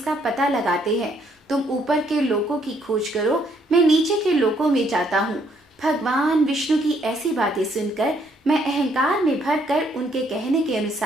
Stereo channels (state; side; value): normal; both; correlation 0.69